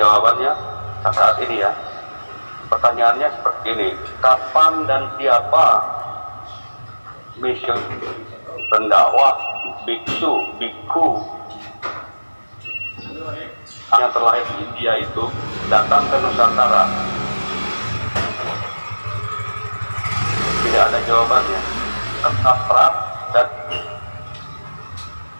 saat ini ya. Pertanyaannya seperti ini: kapan dan siapa mission pendakwah biksu, bikku yang terlahir di India itu datang ke Nusantara? Tidak ada jawabannya. Abstrak, dan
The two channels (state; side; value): inverted; both; correlation -1.00